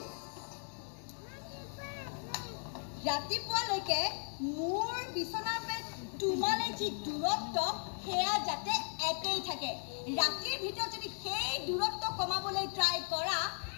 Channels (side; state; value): right; silent; 53 dB below the other